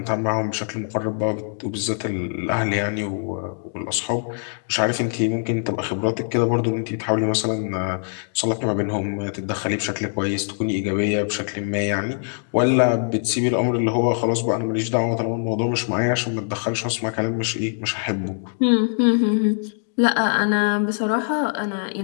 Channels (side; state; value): right; silent; digital silence